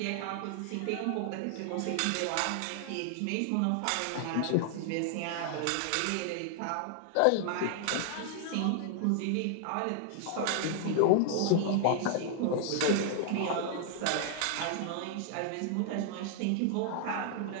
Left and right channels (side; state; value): both; different; correlation 0.00